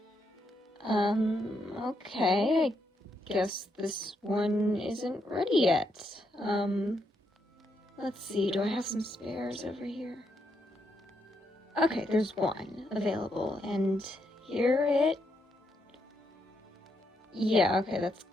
Okay, I guess this one isn't ready yet. Let's see, do I have some spares over here? Okay, there's one available, and here it... Yeah, okay,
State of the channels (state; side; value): normal; both; correlation 0.79